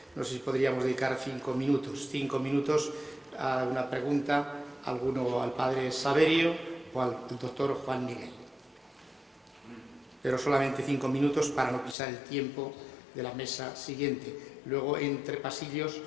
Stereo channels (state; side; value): drops out; right; at 12.0 s